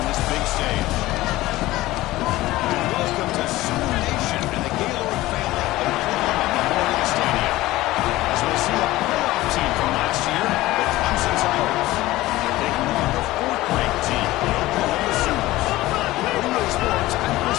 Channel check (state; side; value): quieter; right; 17.5 dB